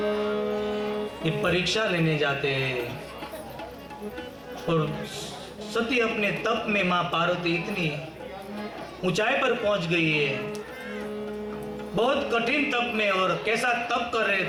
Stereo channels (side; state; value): both; identical; correlation 1.00